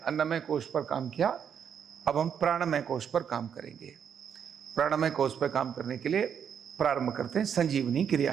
कोश पर काम किया, अब हम प्राणमय कोश पर काम करेंगे। प्राणमय कोश पर काम करने के लिए प्रारंभ करते हैं संजीवनी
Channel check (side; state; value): left; quieter; 7.9 dB